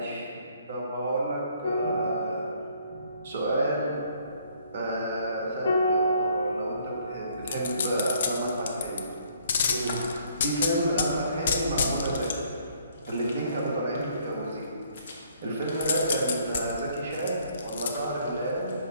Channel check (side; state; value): both; inverted; correlation -0.64